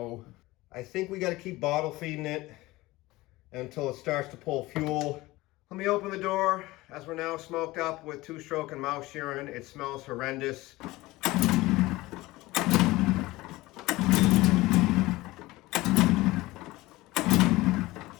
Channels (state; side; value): quieter; right; 19.5 dB